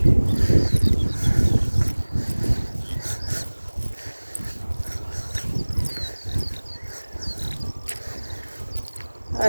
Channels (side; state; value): both; inverted; correlation -1.00